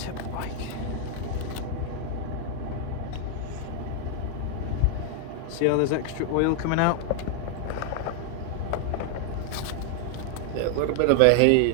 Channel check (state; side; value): different; both; correlation 0.00